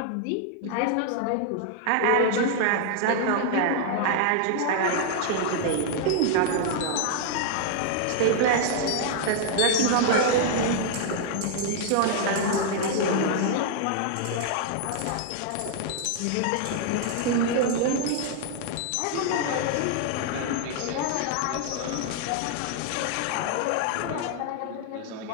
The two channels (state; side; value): different; both; correlation 0.00